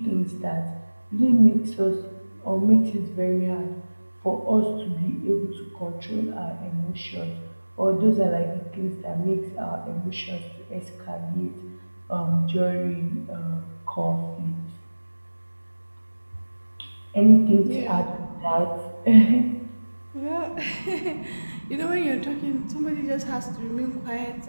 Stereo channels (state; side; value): inverted; both; correlation -1.00